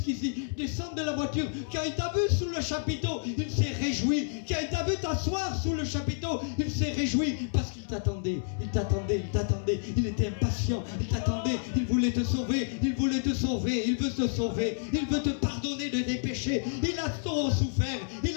descendre de la voiture, quand il t'a vu sous le chapiteau, il s'est réjoui. Quand il t'a vu t'asseoir sous le chapiteau, il s'est réjoui parce qu'il t'attendait. Il Il était impatient, il t'attendait. Il voulait te sauver, il veut te sauver. Il veut te pardonner de tes péchés. Il a trop souffert. Il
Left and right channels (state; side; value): silent; right; 58 dB below the other